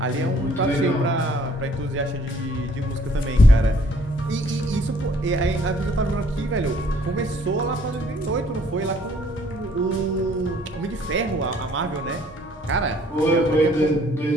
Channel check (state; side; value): normal; both; correlation 0.61